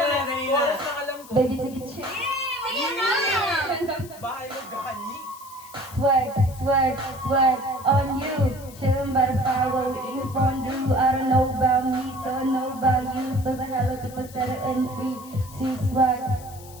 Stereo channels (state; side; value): noise; left; hiss, 20 dB below the sound